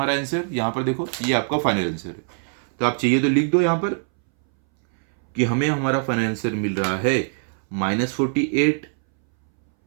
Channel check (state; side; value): silent; left; 63 dB below the other